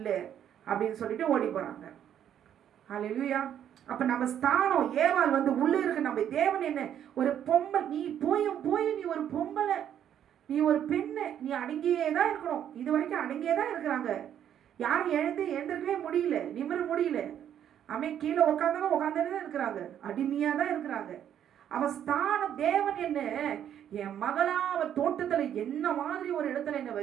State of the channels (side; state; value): left; quieter; 9.9 dB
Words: அப்படின்னு சொல்லிட்டு ஓடி போறாங்க. அல்லேலூயா. அப்ப நம்ம ஸ்தானம் ஏவாள் வந்து உள்ள இருக்கு. நம்ம தேவன் என்ன ஒரு பொம்பளை, நீ போய் நீ ஒரு பொம்பளை, நீ ஒரு பெண்ணு, நீ அடங்கியே தான் இருக்கணும். இது வரைக்கும் அடங்கியே தான் இருக்கிறாங்க. யாரும் எழுந்திருக்கவே முடியல, நிமிர முடியல. கீழே உட்காந்துதான் இருக்கிறாங்க, அடிமையா தான் இருக்கிறாங்க. அவ ஸ்தானம் தேவன் என்ன என் மகளா அவ தோட்டத்துல என்ன மாதிரி ஒரு இடத்துல என்ன